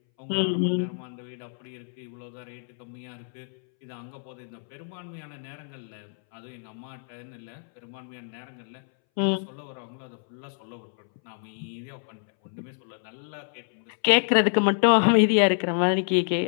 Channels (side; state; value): right; silent; 60 dB below the other